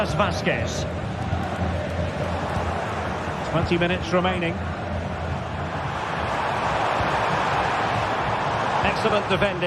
Vazquez. 20 minutes remaining. Excellent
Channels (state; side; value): identical; both; correlation 1.00